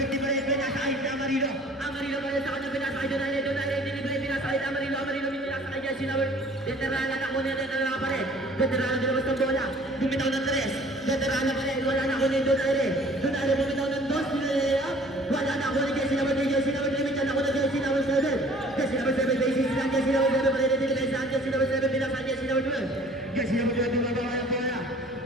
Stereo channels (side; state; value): right; noise; hum, 28 dB below the sound